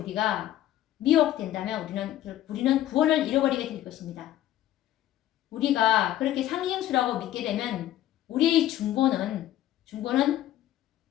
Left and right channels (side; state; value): right; quieter; 13.1 dB